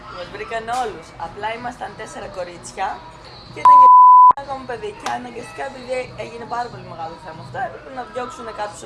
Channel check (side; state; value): both; identical; correlation 1.00